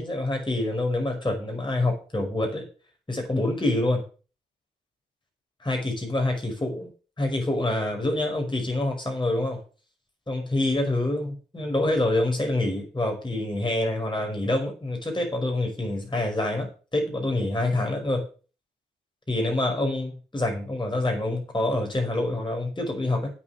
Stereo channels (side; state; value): both; normal; correlation 0.81